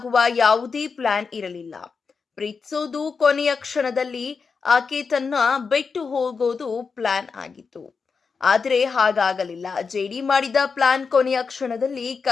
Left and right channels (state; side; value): quieter; right; 5.2 dB